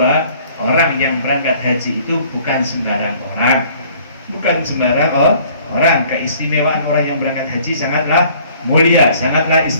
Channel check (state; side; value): inverted; both; correlation -0.55